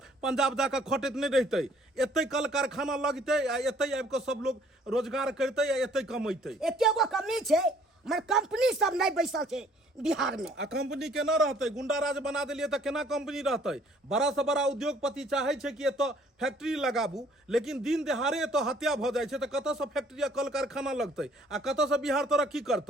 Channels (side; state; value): both; normal; correlation 0.59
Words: पंजाब जाकर खटैत नहीं रहते। एते कल कारखाना लगते, एते आबि के सब लोग रोजगार करते, एते कमैते। एकेगो कमी छै, मगर कंपनी सब नहीं बैसल छै बिहार में। आ कंपनी केना रहते? गुंडा राज बना देलिए तो केना कंपनी रहते? बड़ा से बड़ा उद्योगपति चाहे छै कि एतो फैक्ट्री लगाबू, लेकिन दिन दहाड़े एतो हत्या भ जाय छै तो कतऽ से फैक्ट्री आ कल कारखाना लगते आ कतऽ से बिहार तरक्की